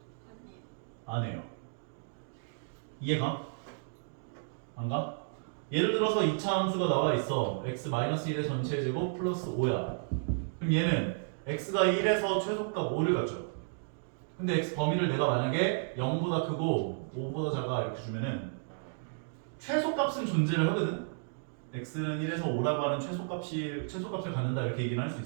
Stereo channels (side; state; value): left; silent; digital silence